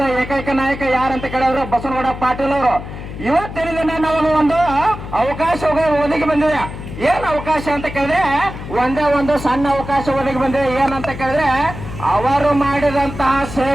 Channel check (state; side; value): noise; left; hum, 10 dB below the sound